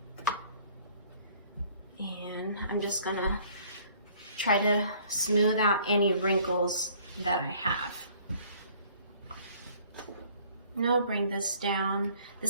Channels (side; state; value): both; inverted; correlation -0.57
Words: And I'm just gonna try to smooth out any wrinkles that I have. Now I'll bring this down.